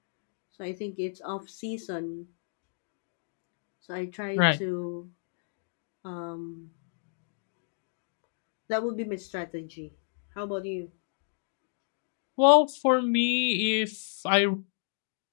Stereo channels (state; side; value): silent; right; digital silence